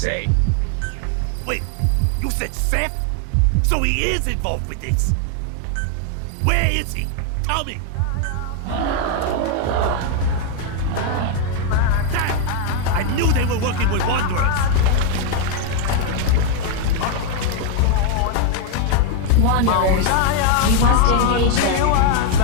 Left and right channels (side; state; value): both; different; correlation 0.01